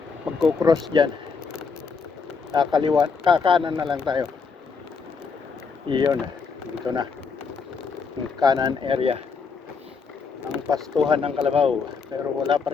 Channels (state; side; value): quieter; right; 5.2 dB